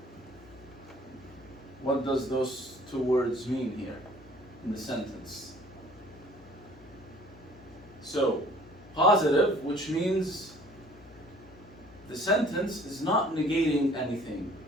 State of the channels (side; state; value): left; noise; hum, 22 dB below the sound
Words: What does those 2 words mean here in the sentence? So, positive, which means the sentence is not negating anything.